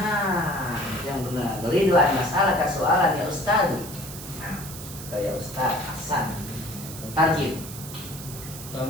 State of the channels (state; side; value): noise; right; hiss, 12 dB below the sound